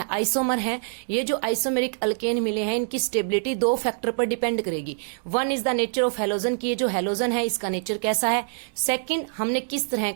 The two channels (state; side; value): silent; left; digital silence